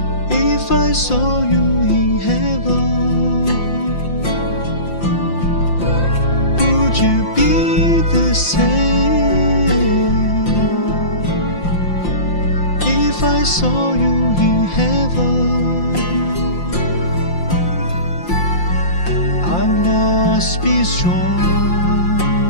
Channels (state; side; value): late; right; 5.7 ms